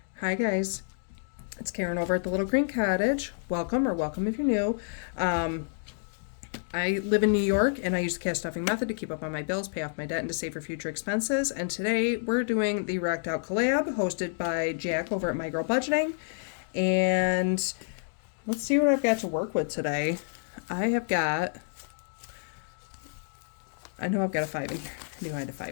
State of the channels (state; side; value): silent; right; digital silence